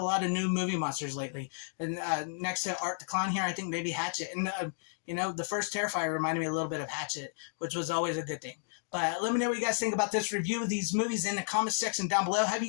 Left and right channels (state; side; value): silent; right; digital silence